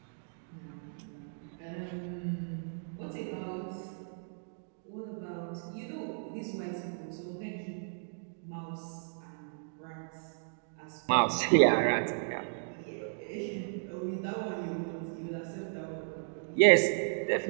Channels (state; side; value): silent; left; digital silence